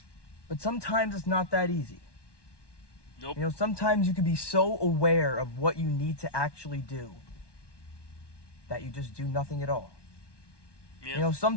but sometimes it's not that easy. Nope. Sometimes you could be so aware of what you need to actually do that you just do nothing at all. Yeah.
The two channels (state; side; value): late; right; 1.2 ms